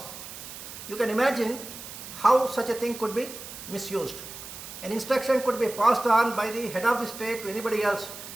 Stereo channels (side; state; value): right; noise; hiss, 12 dB below the sound